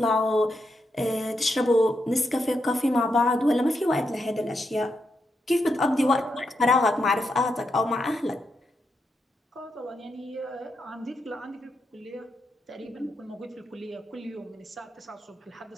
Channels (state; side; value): normal; both; correlation 0.83